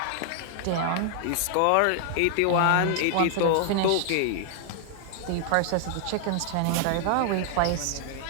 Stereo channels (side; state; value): both; different; correlation 0.00